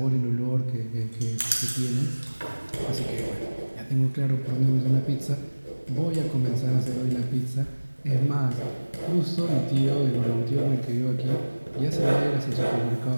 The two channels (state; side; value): inverted; both; correlation -1.00